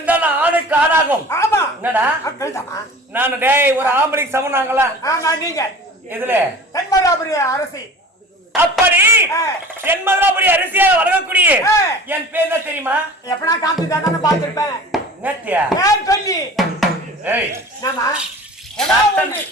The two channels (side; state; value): both; normal; correlation 0.41